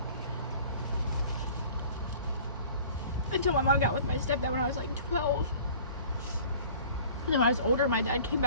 Until my mom got with my stepdad when I was like 12. And then when I was older, my dad came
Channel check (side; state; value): both; inverted; correlation -0.47